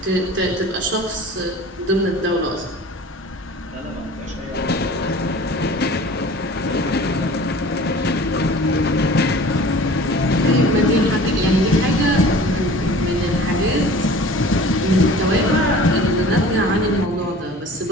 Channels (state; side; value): normal; both; correlation 0.43